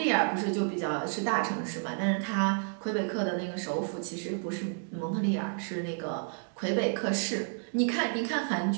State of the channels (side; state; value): left; silent; 56 dB below the other